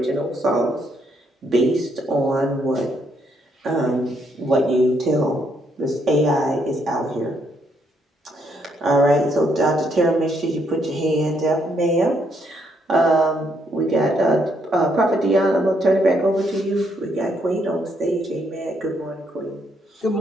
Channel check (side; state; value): both; normal; correlation 0.73